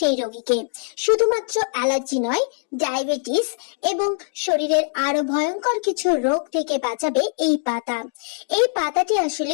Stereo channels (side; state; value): right; silent; digital silence